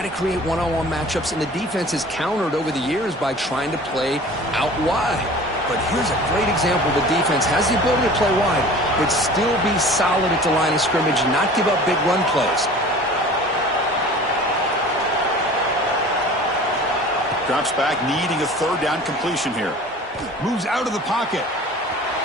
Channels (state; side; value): normal; both; correlation 0.43